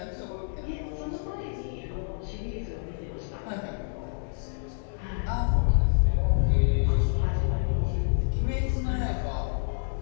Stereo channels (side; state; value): right; silent; digital silence